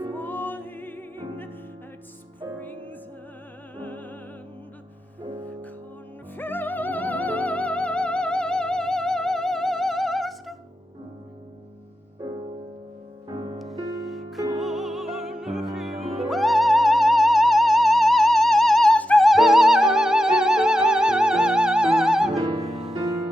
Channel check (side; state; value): both; normal; correlation 0.88